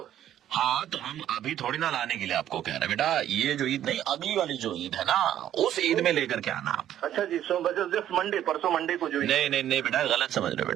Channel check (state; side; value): quieter; left; 11.4 dB